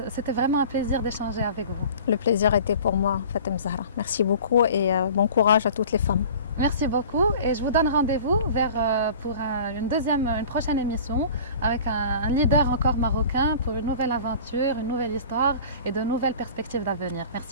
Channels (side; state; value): both; inverted; correlation -0.43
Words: C'était vraiment un plaisir d'échanger avec vous. Le plaisir était pour moi, Fatem Zahra. Merci beaucoup et bon courage à toutes les femmes. Merci beaucoup et je vous donne rendez-vous pour une prochaine émission avec un leader encore marocain pour une nouvelle aventure, une nouvelle histoire et de nouvelles perspectives d'avenir.